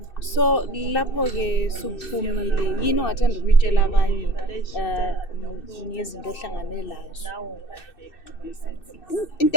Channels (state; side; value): late; right; 2.6 ms